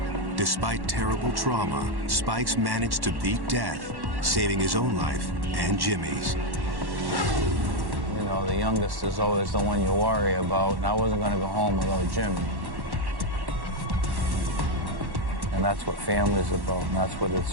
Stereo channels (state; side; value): late; left; 1.1 ms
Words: Despite terrible trauma, Spike's managed to beat death, saving his own life and Jimmy's. You know, the youngest is always the one you worry about, and I wasn't going to go home without Jimmy. And that's what family's about, and that's what